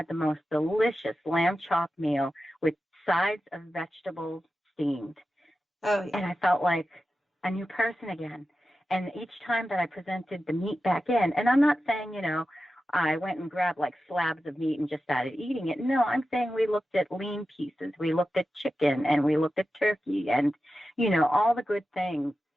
the most delicious lamb chop meal with sides of vegetables steamed. Oh, yeah. And I felt like a new person again. And each time that I presented the meat back in, and I'm not saying, you know, I went and grabbed like slabs of meat and just started eating it. No, I'm saying we looked at lean pieces. We looked at chicken and we looked at turkey and, you know, all the good things.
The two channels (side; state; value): both; normal; correlation 0.92